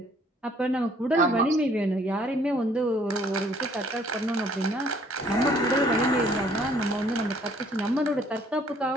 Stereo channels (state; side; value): normal; both; correlation 0.60